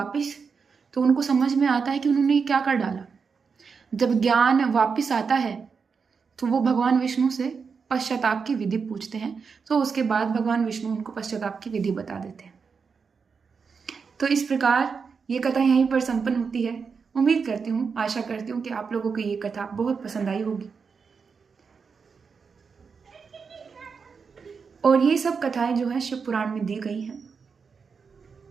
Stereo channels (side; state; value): left; quieter; 5.5 dB